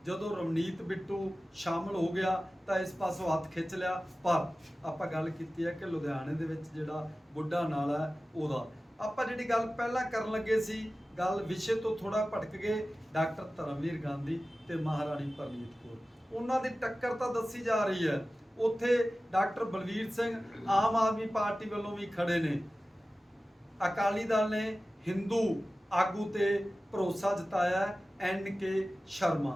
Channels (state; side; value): normal; both; correlation 0.96